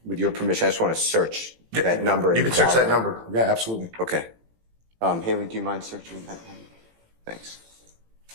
with your permission, I just want to search that number. You can search that number. Yeah, absolutely. Okay. Haley, do you mind searching that number? Thanks.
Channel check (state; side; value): late; left; 18 ms